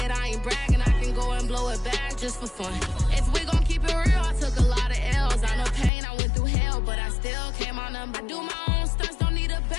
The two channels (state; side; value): drops out; right; at 5.9 s